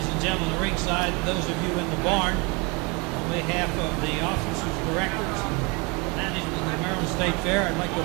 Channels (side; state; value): left; quieter; 28.9 dB